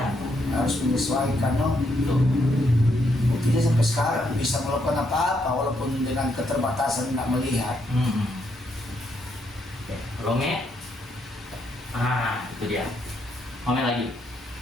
Harus menyesuaikan, no. Itu. Waktu Tidak sampai sekarang bisa melakukan apa-apa walaupun dengan keterbatasan nggak melihat. Oke, Lome. Itu dia. Lome lagi.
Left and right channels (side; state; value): both; normal; correlation 0.76